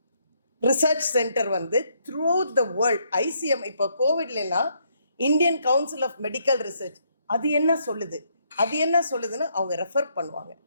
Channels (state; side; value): inverted; both; correlation -0.73